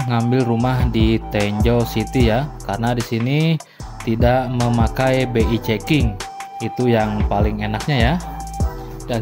ngambil rumah di Tenjo City ya. Karena di sini tidak memakai BI checking. Itu yang paling enaknya ya.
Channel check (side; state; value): both; identical; correlation 1.00